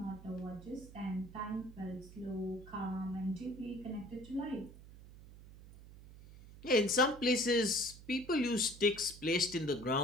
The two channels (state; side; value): noise; right; hum, 18 dB below the sound